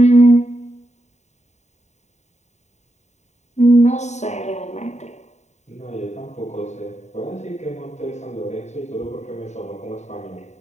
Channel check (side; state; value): right; late; 0.33 ms